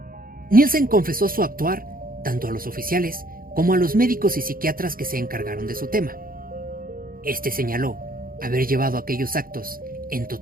Nielsen confesó su actuar tanto a los oficiales como a los médicos y psiquiatras que se encargaron de su tema. Este señaló haber llevado aquellos actos en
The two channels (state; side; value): late; left; 0.42 ms